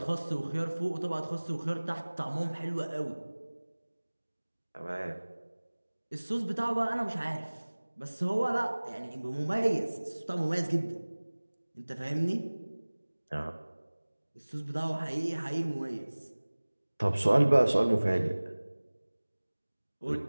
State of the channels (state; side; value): inverted; both; correlation -1.00